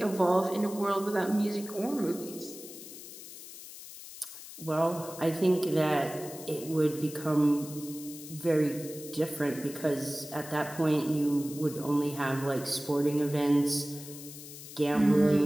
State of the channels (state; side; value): noise; left; hiss, 14 dB below the sound